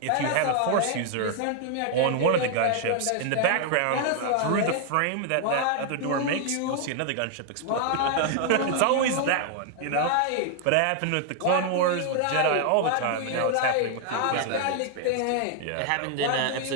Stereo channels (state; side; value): different; both; correlation 0.00